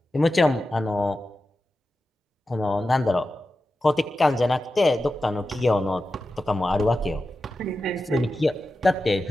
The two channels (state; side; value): normal; both; correlation 0.92